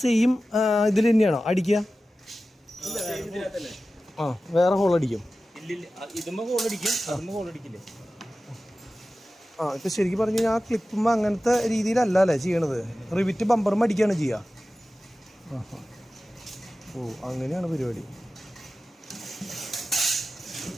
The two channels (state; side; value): normal; both; correlation 0.95